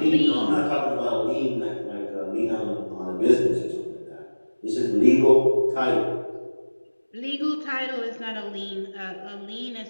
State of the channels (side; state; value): both; inverted; correlation -1.00